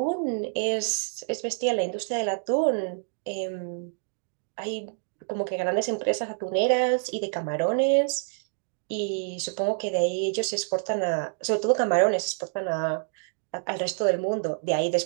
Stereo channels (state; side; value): silent; left; digital silence